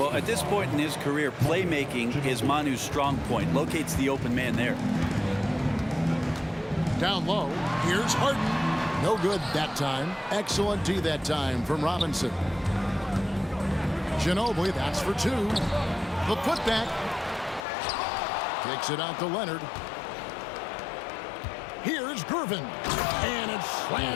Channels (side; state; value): right; drops out; at 17.6 s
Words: at this point in his career, playmaking is Manu's strong point. Locates the open man there. Down low, here's Harden. No good that time. Excellent D that time from Robinson. Ginobili, that's for 2. The putback. Takes it out to Leonard. Here's Gervin. And it's